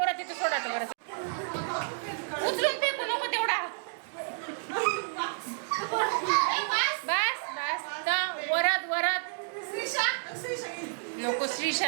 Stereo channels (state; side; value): silent; left; digital silence